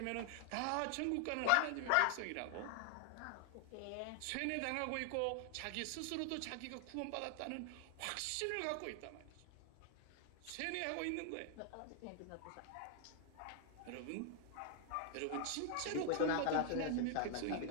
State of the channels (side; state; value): both; different; correlation 0.00